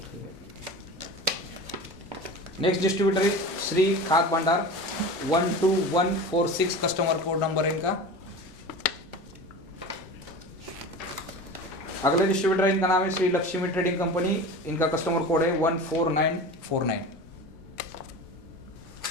Next distributor is Shri Khad Bhandar 12146, customer code number है इनका। अगले डिस्ट्रीब्यूटर इनका नाम है श्री लक्ष्मी ट्रेडिंग कंपनी, इनका कस्टमर कोड है 14949।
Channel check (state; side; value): normal; both; correlation 0.32